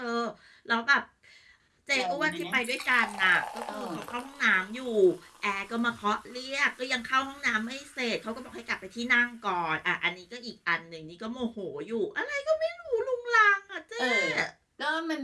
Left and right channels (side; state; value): both; identical; correlation 1.00